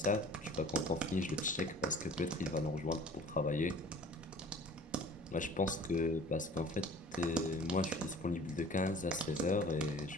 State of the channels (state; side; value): normal; both; correlation 0.47